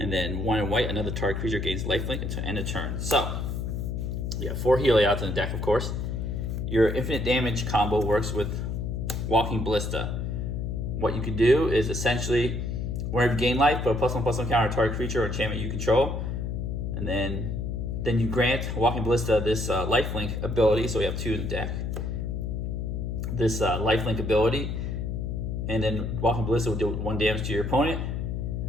then 1 in white, another target creature gains lifelink until end of turn. So you have 4 Heliods in the deck, of course. Your infinite damage combo works with Walking Ballista. What you can do is essentially, whenever you gain life, put a +1/+1 counter on target creature or enchantment you control. And then you grant Walking Ballista this lifelink ability. So we have 2 in the deck. This lifelink ability, and then Walking Ballista will do 1 damage to your opponent.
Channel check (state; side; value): noise; left; hum, 2 dB below the sound